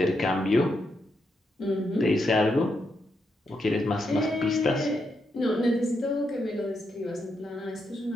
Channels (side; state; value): both; normal; correlation 0.82